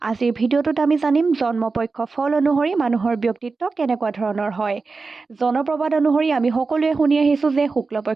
আজিৰ ভিডিঅ'টোত আমি জানিম জন্মপক্ষ ফল অনুসৰি মানুহৰ ব্যক্তিত্ব কেনেকুৱা ধৰণৰ হয়। জনপ্ৰবাদ অনুসৰি আমি সকলোৱে শুনি আহিছোঁ যে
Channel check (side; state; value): left; quieter; 4.2 dB